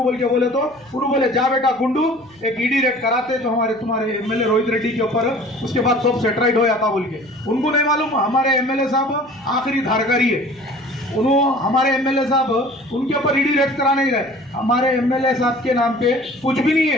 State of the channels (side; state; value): left; noise; hum, 29 dB below the sound